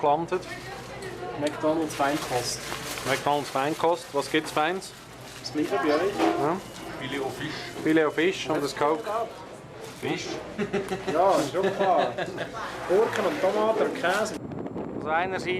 gelandet. McDonald's Feinkost. McDonald's Feinkost. Was gibt es Feins? Das gleiche bei euch? Ja. Filet au Fisch. Filet au Fisch und das Coke. Fisch? Ja, ist schon klar. Gurken und Tomaten und Käse. Also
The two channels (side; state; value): both; identical; correlation 1.00